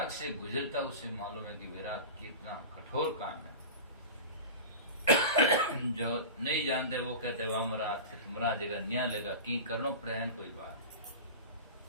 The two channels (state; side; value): inverted; both; correlation -0.30